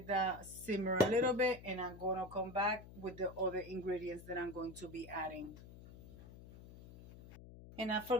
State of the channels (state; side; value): noise; left; hum, 17 dB below the sound